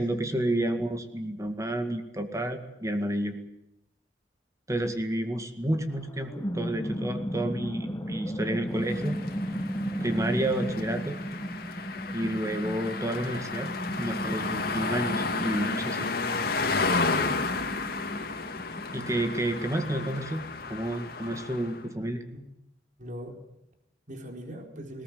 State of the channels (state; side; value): normal; both; correlation 0.56